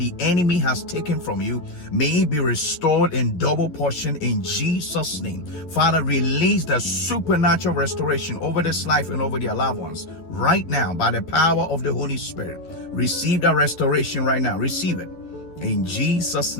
enemy has taken from you may be restored in double portion in Jesus' name. Father, release the supernatural restoration over this life and over their loved ones right now by the power of the Holy Spirit. Receive that restoration right now. Receive it. In Jesus'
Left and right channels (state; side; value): late; right; 11 ms